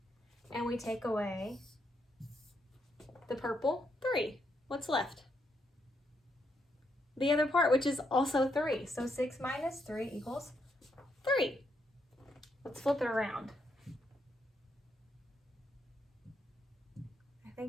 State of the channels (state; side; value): normal; both; correlation 0.78